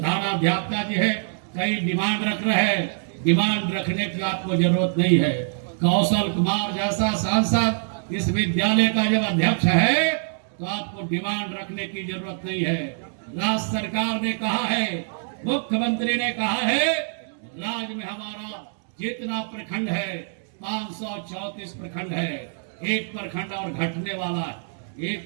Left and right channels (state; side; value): silent; left; digital silence